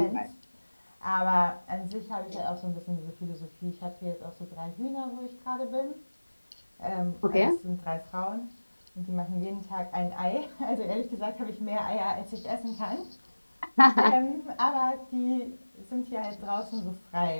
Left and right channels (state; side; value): inverted; both; correlation -1.00